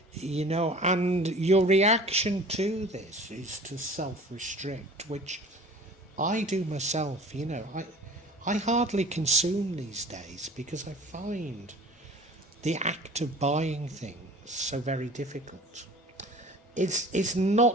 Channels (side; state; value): both; normal; correlation 0.44